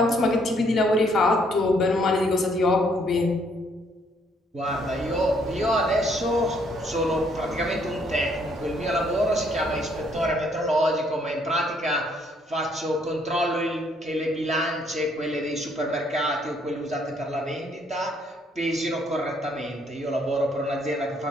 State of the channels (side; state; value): both; normal; correlation 0.68